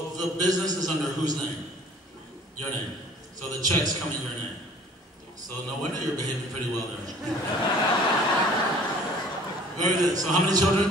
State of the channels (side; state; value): both; normal; correlation 0.51